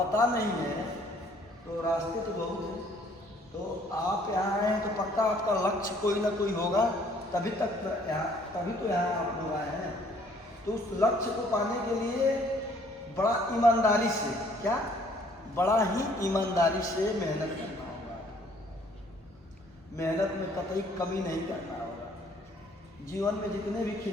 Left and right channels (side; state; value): both; normal; correlation 0.60